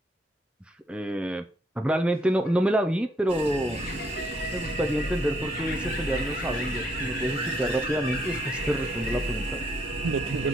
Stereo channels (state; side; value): normal; both; correlation 0.71